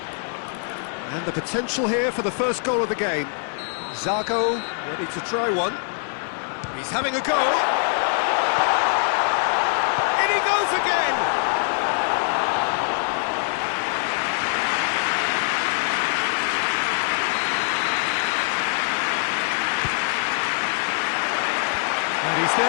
And the potential here for the first goal of the game. Zago ready to try one. He's having a go. In he goes again. And he's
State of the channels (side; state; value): right; silent; 63 dB below the other